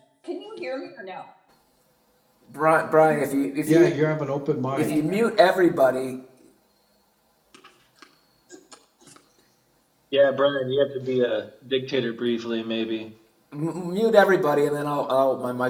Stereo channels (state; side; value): identical; both; correlation 1.00